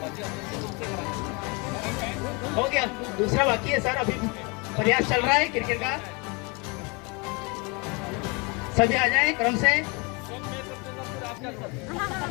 हो गया, दूसरा बाकी है सर, अभी प्रयास चल रहा है क्रिकेट का। सभी आ जाए क्रम से।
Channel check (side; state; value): right; quieter; 29.2 dB